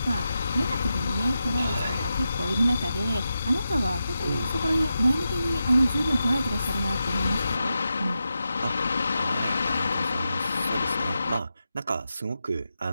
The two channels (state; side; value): inverted; both; correlation -0.89